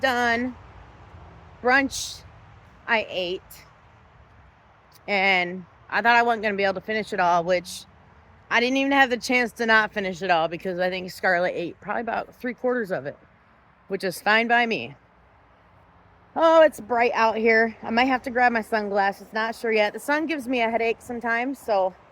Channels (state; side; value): identical; both; correlation 1.00